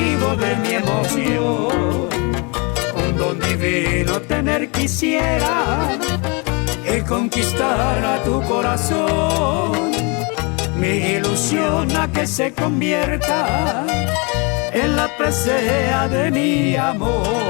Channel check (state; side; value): quieter; right; 31.3 dB